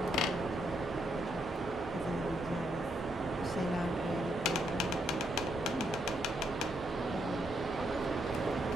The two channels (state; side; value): normal; both; correlation 0.77